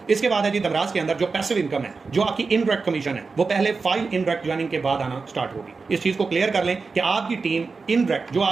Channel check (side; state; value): left; quieter; 4.4 dB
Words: इसके बाद है जी दमराज के अंदर जो पैसिव इनकम है, जो आपकी इनडायरेक्ट कमीशन है, वो पहले 5 इनडायरेक्ट ज्वाइनिंग के बाद आना स्टार्ट होगी। इस चीज को क्लियर कर लें कि आपकी टीम इनडायरेक्ट, जो